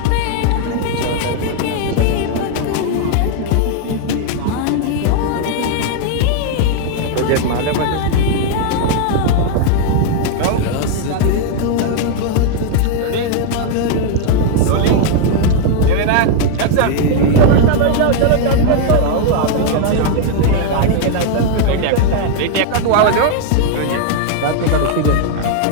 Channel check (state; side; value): different; both; correlation 0.00